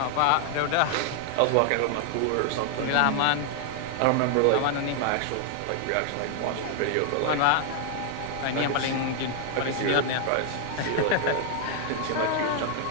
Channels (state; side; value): different; both; correlation 0.00